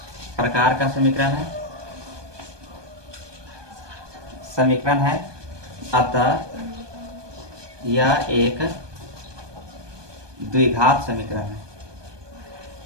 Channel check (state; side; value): late; left; 1.2 ms